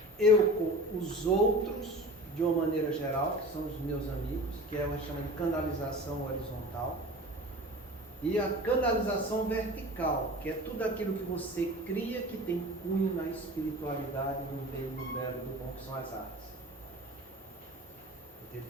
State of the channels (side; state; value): both; normal; correlation 0.37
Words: eu com os outros, de uma maneira geral, que são os meus amigos, que é o que a gente chama de canalização horizontal, e a canalização vertical, que é tudo aquilo que você cria que tem cunho na espiritualidade, no bem, no belo, no bom, que são as artes. Entende?